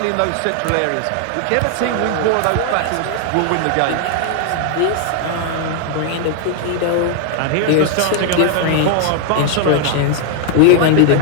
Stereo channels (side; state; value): both; different; correlation 0.00